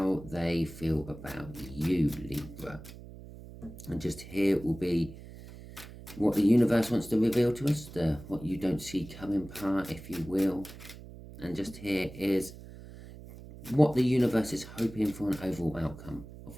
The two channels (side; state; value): right; noise; hum, 15 dB below the sound